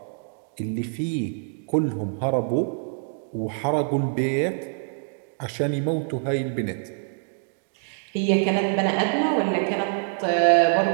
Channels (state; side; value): silent; left; digital silence